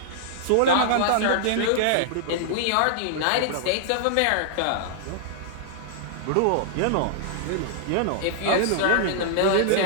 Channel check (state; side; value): different; both; correlation -0.01